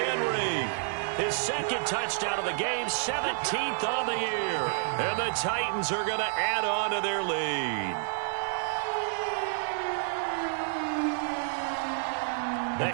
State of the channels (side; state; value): left; silent; 57 dB below the other